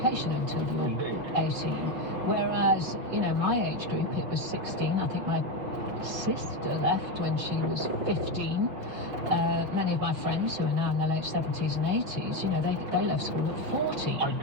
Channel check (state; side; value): late; left; 5.8 ms